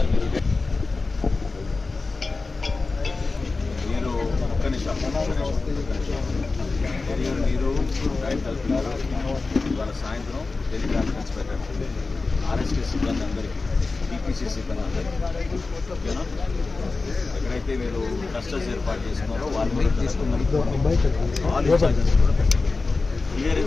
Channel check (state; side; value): quieter; right; 3.8 dB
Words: మీరు ఒక్క నిమిషం మీరు రైట్ వెళ్తున్నారు. ఇవాళ సాయంత్రం టెలికాన్ఫరెన్స్ పెట్టండి ఆర్ఎస్కే సిబ్బంది అందరికీ, టీపీసీ సిబ్బంది అందరికీ. ఓకేనా? ఎక్కడైతే మీరు క్లస్టర్స్ ఏర్పాటు చేసుకున్నారో వాళ్ళు తీసుకున్నారు. ఆల్ ఇన్ఛార్జెస్ కూడా పెట్టండి. క్లియర్